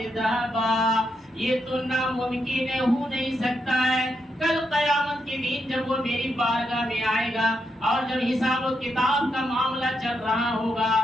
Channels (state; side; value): normal; both; correlation 0.82